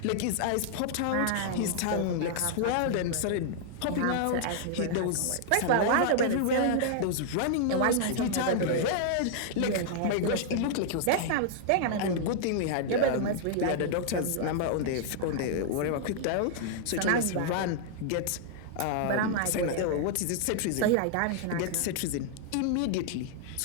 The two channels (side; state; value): both; different; correlation -0.01